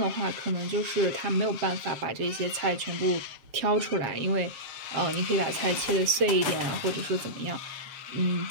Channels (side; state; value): left; late; 7.5 ms